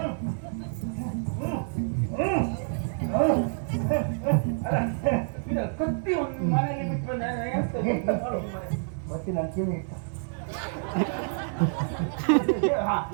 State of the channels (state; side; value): silent; left; 59 dB below the other